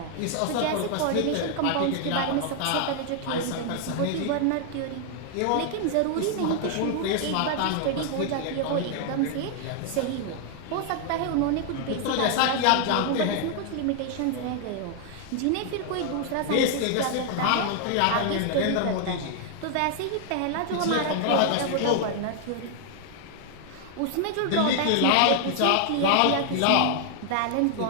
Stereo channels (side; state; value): both; different; correlation 0.00